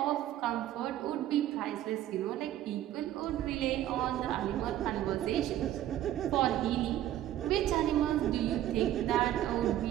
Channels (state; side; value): quieter; left; 12.7 dB